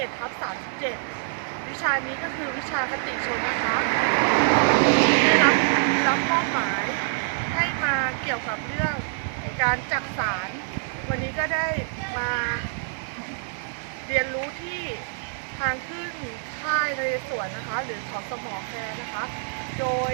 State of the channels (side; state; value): left; silent; 61 dB below the other